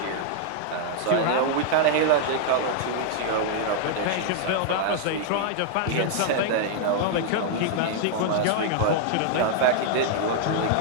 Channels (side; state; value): both; different; correlation -0.01